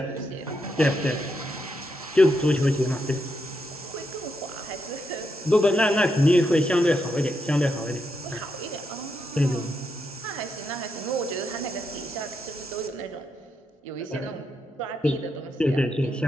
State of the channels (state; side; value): normal; both; correlation 0.81